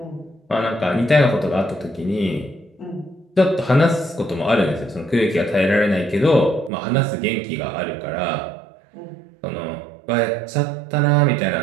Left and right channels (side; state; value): left; drops out; at 6.7 s